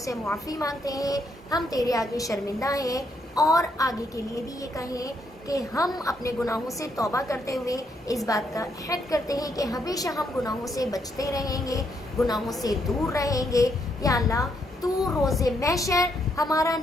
मुआफ़ी मांगते हैं, हम तेरे आगे शर्मिंदा हैं और आगे के लिए भी ये कहें कि हम अपने गुनाहों से तौबा करते हुए इस बात का अहद करते हैं कि हमेशा हम गुनाहों से बचते रहेंगे, गुनाहों से दूर रहेंगे। या अल्लाह तू रोज़े महशर हमारा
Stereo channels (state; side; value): normal; both; correlation 0.75